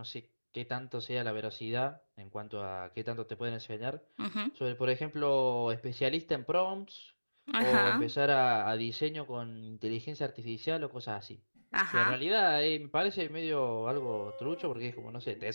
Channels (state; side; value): inverted; both; correlation -1.00